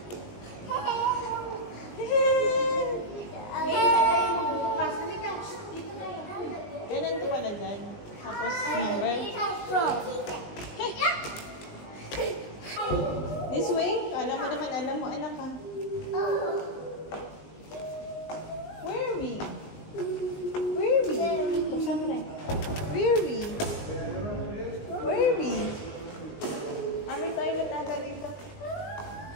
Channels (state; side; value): late; right; 20 ms